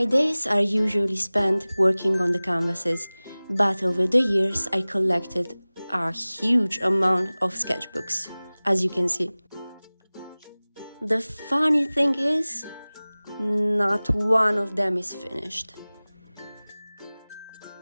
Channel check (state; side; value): inverted; both; correlation -0.99